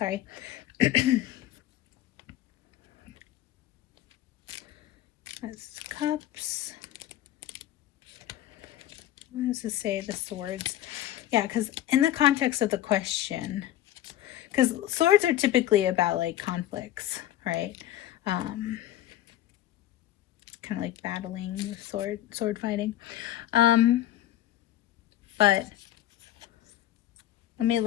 That's Cups. What does it say? The Swords. Yeah, because in the context of the question, because swords are typically about like conflicts, right? Kind of like battling with sword fighting. But let me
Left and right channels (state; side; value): quieter; right; 13.2 dB